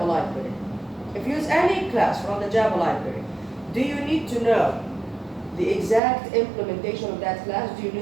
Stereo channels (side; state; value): left; drops out; at 6.0 s